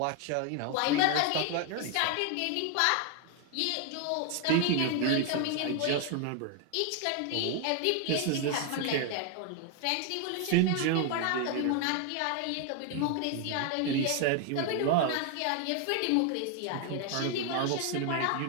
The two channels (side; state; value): both; different; correlation 0.01